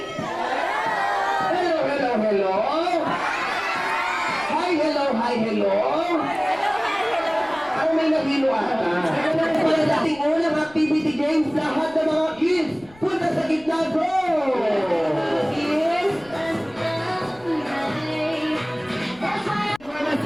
Hello, hello, hello! Hi, hello, hi, hello! Ano may nahilo ata? Para sa ating unang activity games, lahat ng mga kids, punta sa gitna, go! Kids! Mama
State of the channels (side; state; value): left; noise; rumble, 26 dB below the sound